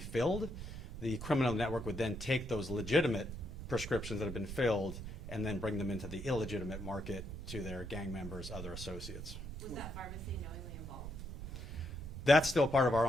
The criminal network would then take those legitimate prescriptions that have been filled and then bring them into the illegitimate market to their gang members, other associates. Was that pharmacy knowingly involved? That's still part of our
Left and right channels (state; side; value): noise; right; rumble, 9 dB below the sound